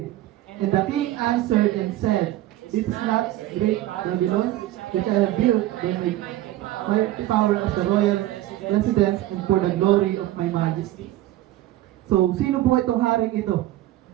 And the king answered and said, "It's not great Babylon, which I have built by my power as the royal residence and for the glory of my majesty." So, sino po itong haring ito?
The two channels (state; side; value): quieter; left; 15.0 dB